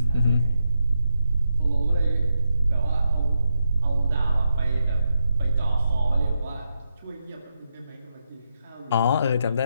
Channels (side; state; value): both; inverted; correlation -0.82